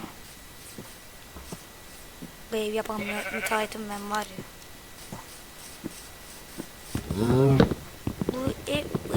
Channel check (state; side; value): identical; both; correlation 1.00